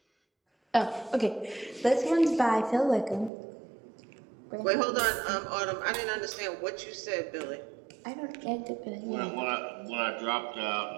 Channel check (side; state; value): left; drops out; at 3.3 s